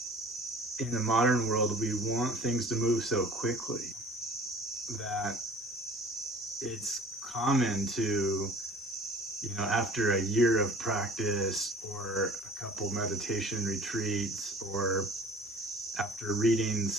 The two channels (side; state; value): both; normal; correlation 0.47